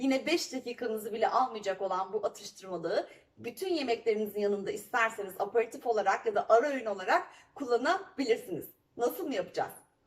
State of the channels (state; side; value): identical; both; correlation 1.00